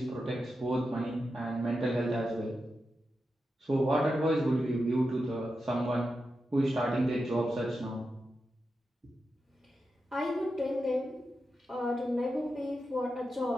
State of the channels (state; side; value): normal; both; correlation 0.89